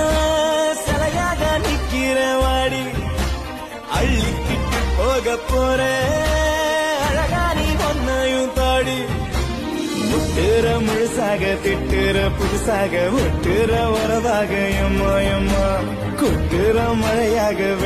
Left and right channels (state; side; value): identical; both; correlation 1.00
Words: சிலையாக நிக்கிற வாடி அள்ளிக்கிட்டு போக போற அழகா நீ ஒன்னையும் தாடி முட்டுற முழுசாக திட்டுற புதுசாக ஒட்டுற உறவாக எம்மா எம்மா கொட்டுற மழையாக